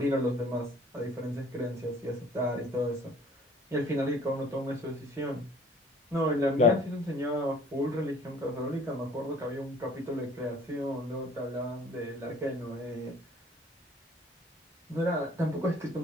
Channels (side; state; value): both; normal; correlation 0.54